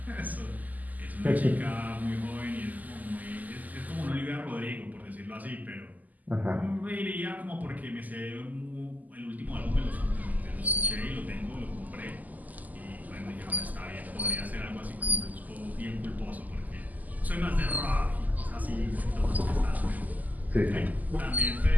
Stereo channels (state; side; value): late; left; 0.080 ms